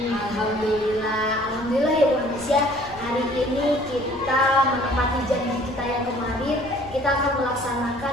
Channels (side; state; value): left; noise; rumble, 18 dB below the sound